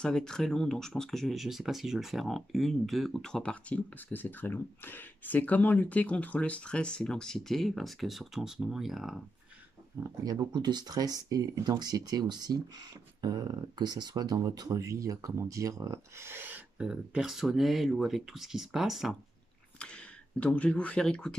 va être très long, donc je pense que je ne sais pas si je vais le faire en une, deux ou trois parties parce que c'est très long. C'est comment lutter contre le stress et l'anxiété, parce que surtout en ce moment, il y a beaucoup de stress et d'anxiété aussi, que ce soit dans votre vie, comment dire, personnelle ou avec tout ce qui se passe. Donc, je vais vous faire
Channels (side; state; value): both; normal; correlation 0.85